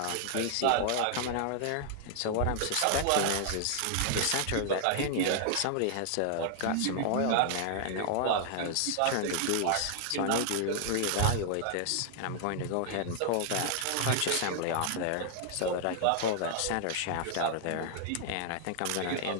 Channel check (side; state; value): both; different; correlation -0.01